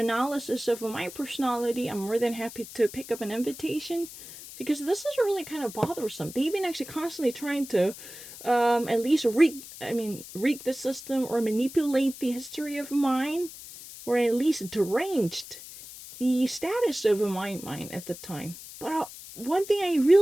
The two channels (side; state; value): left; noise; hiss, 14 dB below the sound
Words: of my personality. I'm more than happy to pick up an invitation, because this is really kind of bothersome. They've been actually constantly trying to at least rig the system or manipulate the history of mine, or at least deranged the status of my mind at the time. But one thing I